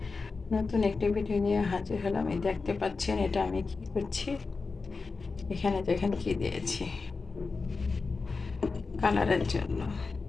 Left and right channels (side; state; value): right; quieter; 4.3 dB